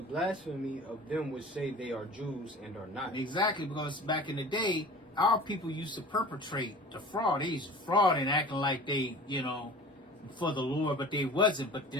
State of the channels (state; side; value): normal; both; correlation 0.40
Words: of them which say they are Jews and are not. Exactly, because back in the day, our people used to perpetrate the fraud. They used to fraud and acting like they, you know, for the Lord, but they wasn't. But